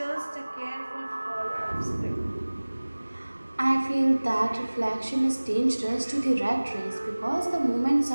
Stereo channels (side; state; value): both; inverted; correlation -1.00